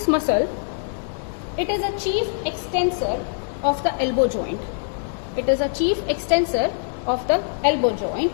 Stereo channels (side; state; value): right; silent; 63 dB below the other